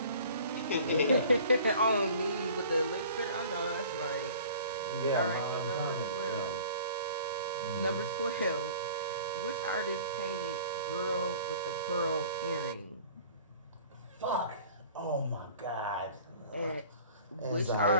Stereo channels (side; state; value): both; inverted; correlation -0.47